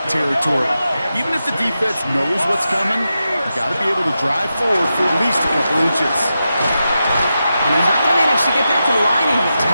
territory. Even if the defense knows what's coming, you got to be able to drive forward for at least a couple inches. And he's not going to manage to get back to the line even.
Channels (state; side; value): inverted; both; correlation -0.89